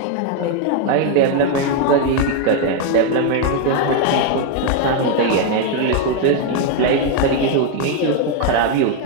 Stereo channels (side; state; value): both; different; correlation 0.01